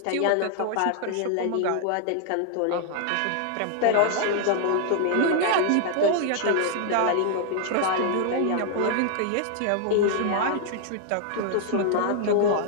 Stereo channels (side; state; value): both; different; correlation 0.00